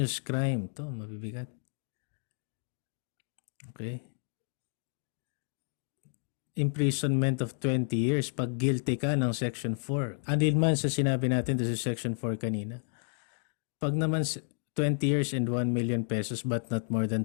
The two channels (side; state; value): right; silent; 57 dB below the other